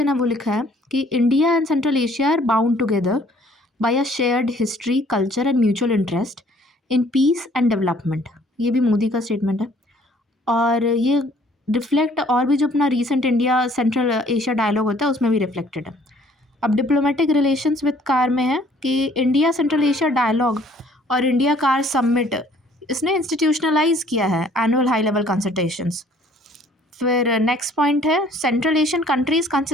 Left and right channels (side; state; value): both; normal; correlation 0.58